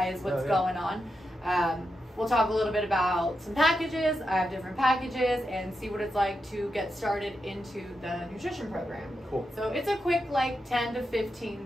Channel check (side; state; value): both; normal; correlation 0.86